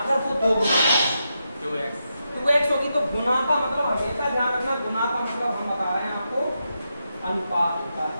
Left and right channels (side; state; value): both; inverted; correlation -0.85